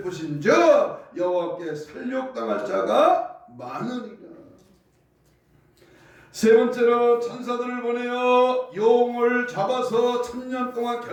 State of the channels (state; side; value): identical; both; correlation 1.00